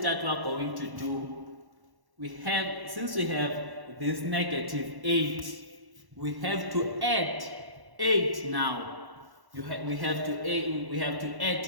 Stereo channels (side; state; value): left; late; 1.1 ms